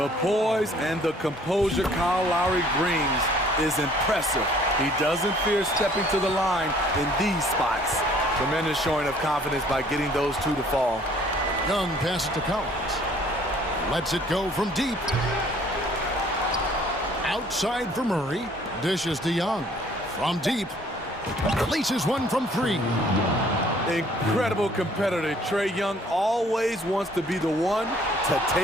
poise and the composure Kyle Lowry brings is impressive. He doesn't fear stepping to the line in these spots. Tremendous showing of confidence by getting those 2 to fall. Young passes to Collins. Lets it go from deep. Outside for Murray. Dishes to Young. From deep. Releases one from 3. Incredible competitor. Trae Young always wants to be the one to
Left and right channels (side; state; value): both; normal; correlation 0.58